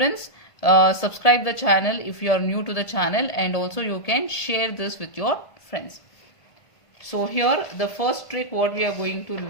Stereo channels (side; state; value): right; late; 1.5 ms